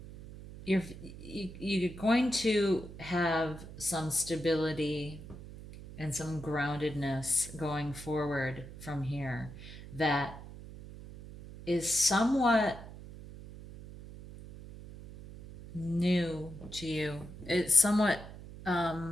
you're going to have some stability and some groundedness going forward from here that is somewhat new to you. It's somewhat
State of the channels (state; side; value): noise; right; hum, 14 dB below the sound